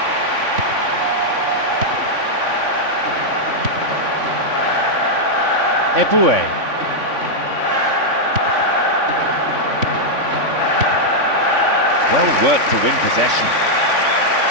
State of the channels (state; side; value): late; left; 3.5 ms